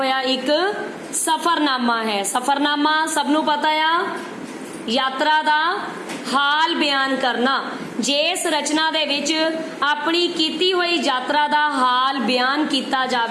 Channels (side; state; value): both; identical; correlation 1.00